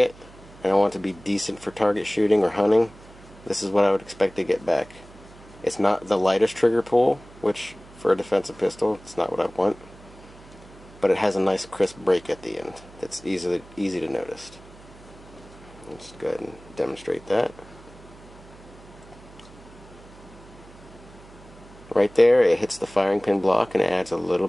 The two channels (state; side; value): noise; right; hum, 21 dB below the sound